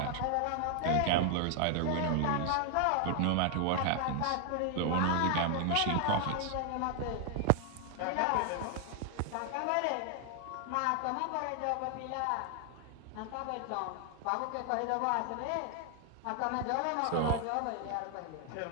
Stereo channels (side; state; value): both; different; correlation 0.00